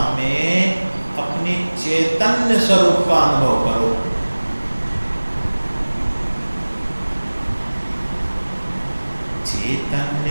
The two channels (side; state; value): both; inverted; correlation -1.00